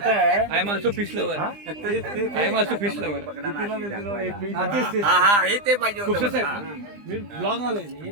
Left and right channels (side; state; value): left; late; 20 ms